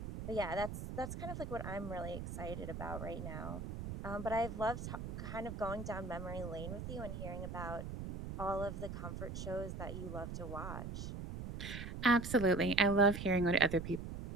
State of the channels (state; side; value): noise; right; rumble, 7 dB below the sound